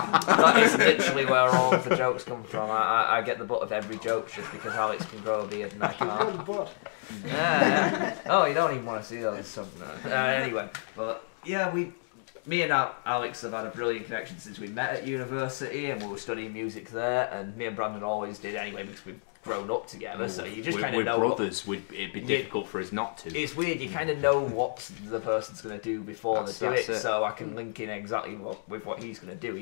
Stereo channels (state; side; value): silent; right; digital silence